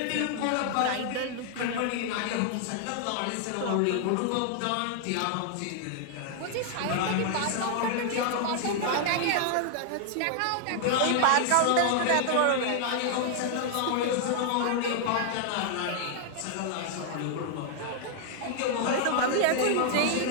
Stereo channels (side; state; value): both; different; correlation 0.00